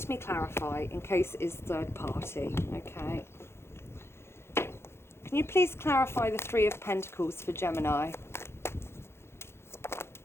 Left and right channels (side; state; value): right; late; 0.12 ms